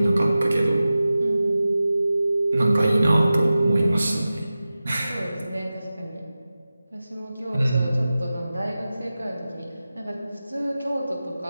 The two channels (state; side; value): inverted; both; correlation -0.95